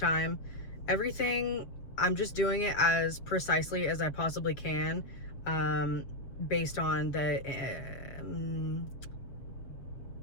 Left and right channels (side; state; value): right; late; 7.2 ms